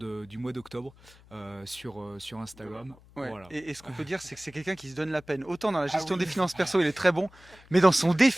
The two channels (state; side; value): noise; left; hum, 25 dB below the sound